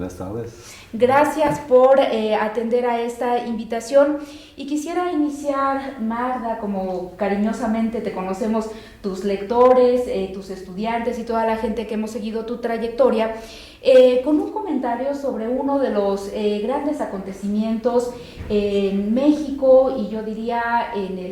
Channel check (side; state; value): both; identical; correlation 1.00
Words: tardes. Gracias por atender a esta invitación, y quisiera iniciar, Magda, como cariñosamente te conocemos tus lectores, tus estudiantes y toda la gente que hemos seguido tu trayectoria, con un comentario sobre uno de los grandes acontecimientos en México y yo diría en